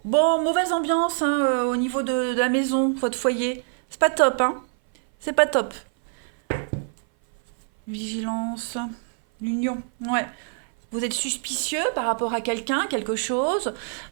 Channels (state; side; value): silent; left; 57 dB below the other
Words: Bon, mauvaise ambiance hein, au niveau de la maison, votre foyer. C'est pas top, hein. C'est pas top. Vigilance. L'union. Ouais. Vous êtes suspicieux par rapport à quelqu'un, quelque chose.